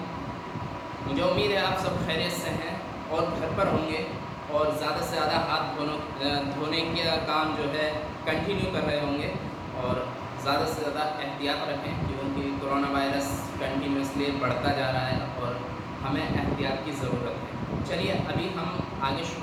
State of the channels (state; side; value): identical; both; correlation 1.00